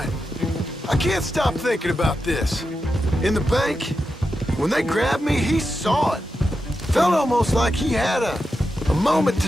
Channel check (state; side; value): normal; both; correlation 0.88